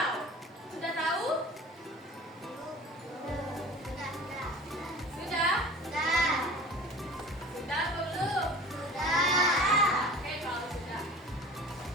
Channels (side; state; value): both; normal; correlation 0.40